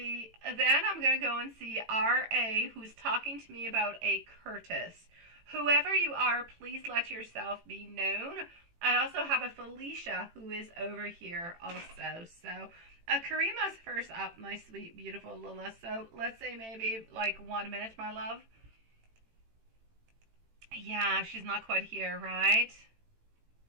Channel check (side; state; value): left; late; 18 ms